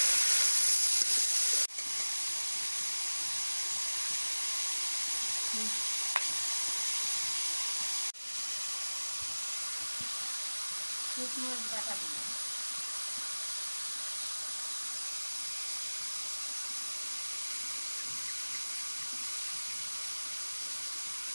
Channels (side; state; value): both; inverted; correlation -1.00